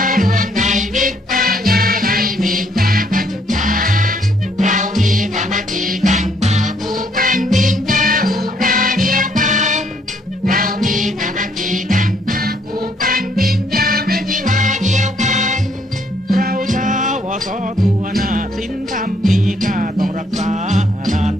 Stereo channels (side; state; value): both; normal; correlation 0.68